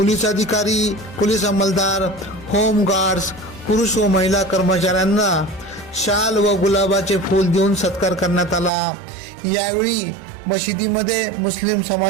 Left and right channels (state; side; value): drops out; left; at 8.7 s